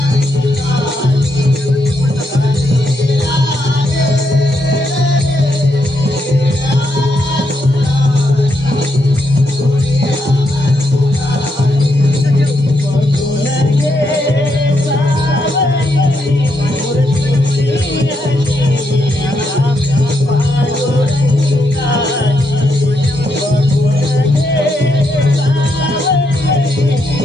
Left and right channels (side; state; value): both; normal; correlation 0.79